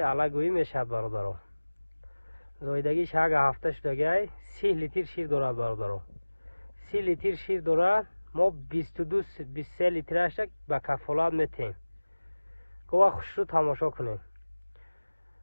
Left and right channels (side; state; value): both; inverted; correlation -1.00